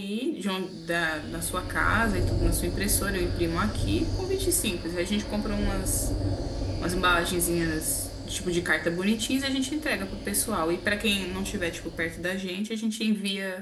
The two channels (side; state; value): both; identical; correlation 1.00